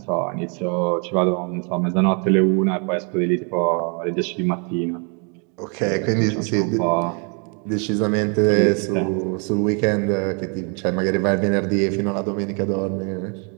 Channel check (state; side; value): quieter; left; 37.5 dB